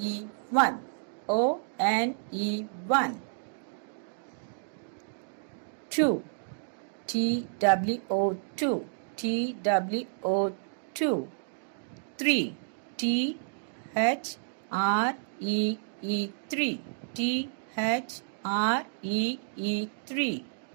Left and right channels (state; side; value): silent; left; digital silence